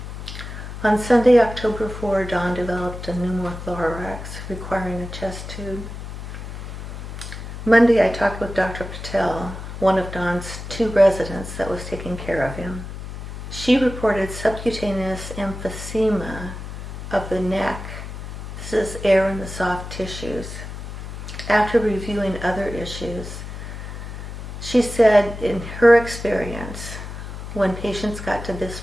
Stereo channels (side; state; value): left; noise; hum, 9 dB below the sound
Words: On Sunday, October 4, Don developed a pneumothorax requiring a chest tube. Monday, I talked with Dr. Patel, one of Don's 2 residents that was taking care of him. She reported subcutaneous emphysema of the neck. This is air in the soft tissues. After reviewing other issues, she said in her experience, when patients got to this